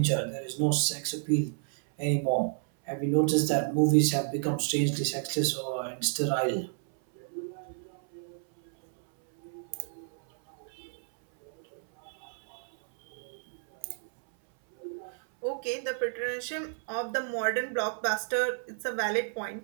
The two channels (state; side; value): silent; left; 57 dB below the other